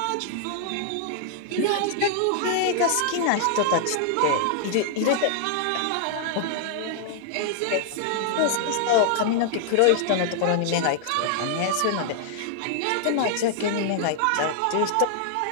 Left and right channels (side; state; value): both; different; correlation -0.01